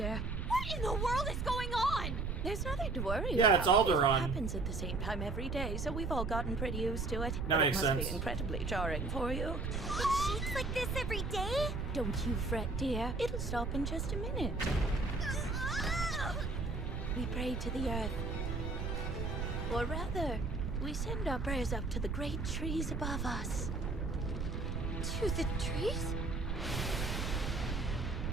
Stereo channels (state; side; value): noise; right; rumble, 2 dB below the sound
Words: What in the world is going on? There's nothing to worry Yeah, about. it's Aldoron. It happens at the same time every day, so we've all gotten pretty used to it. That But makes it must sense. be incredibly jarring for you. It shakes like this every day? Don't you fret, dear. It'll stop in just a minute. We pray to the earth. Or rather, we send our prayers up to the great trees above us. To the trees?